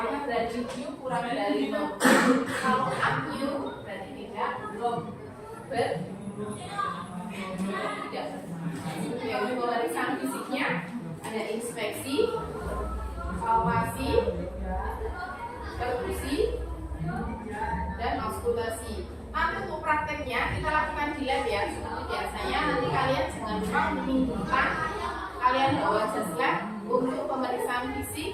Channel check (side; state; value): both; identical; correlation 1.00